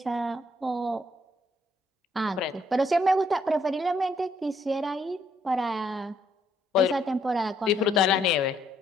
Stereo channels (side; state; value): both; normal; correlation 0.70